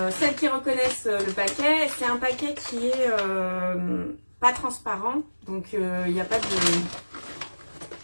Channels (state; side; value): inverted; both; correlation -1.00